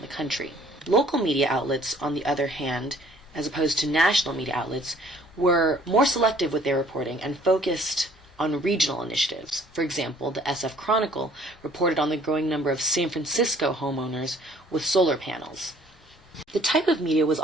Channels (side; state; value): both; normal; correlation 0.57